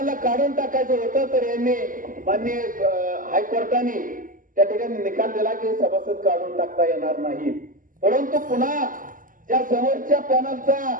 काढून टाकायचं होतं तर यांनी माननीय हायकोर्टाने त्या ठिकाणी निकाल दिला की सभासद काढून टाकता येणार नाही। परंतु पुन्हा त्या समोरच्या पॅनलचा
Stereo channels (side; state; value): left; late; 0.39 ms